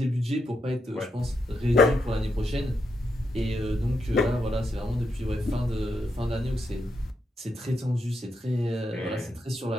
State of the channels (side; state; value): both; normal; correlation 0.81